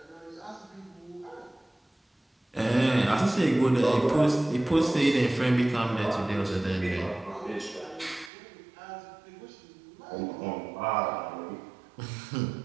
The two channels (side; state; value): left; drops out; at 8.3 s